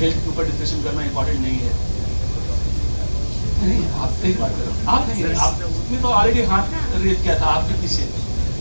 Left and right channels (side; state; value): both; inverted; correlation -1.00